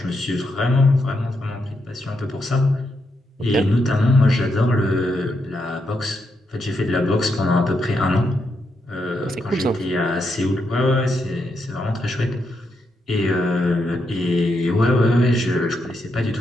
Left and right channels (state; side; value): normal; both; correlation 0.81